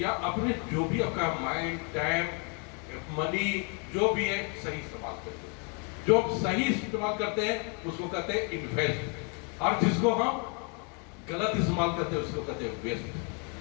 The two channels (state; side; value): quieter; right; 36.3 dB